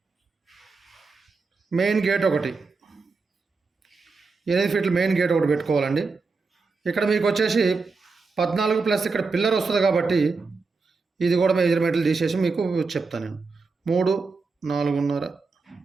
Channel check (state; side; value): quieter; left; 4.3 dB